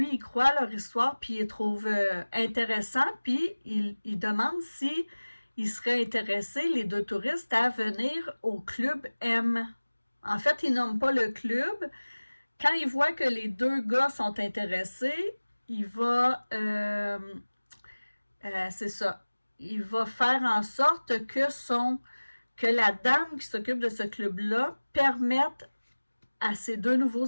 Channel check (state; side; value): inverted; both; correlation -1.00